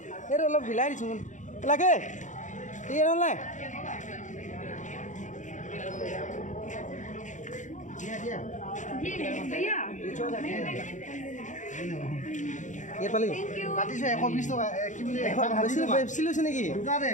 এইটো অলপ হিলাই দিছোঁ লাগে ঠিক আছে নাই ইয়াত পালি কাটিছে 120 টকা কি বুলি বেছি লৈছে নেকি দুটাতে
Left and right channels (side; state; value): right; late; 0.36 ms